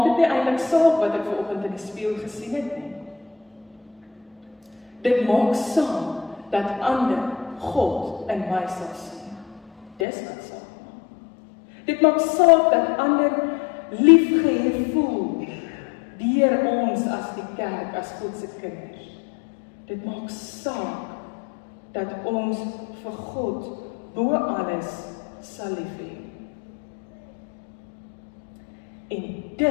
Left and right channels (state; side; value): drops out; right; at 10.1 s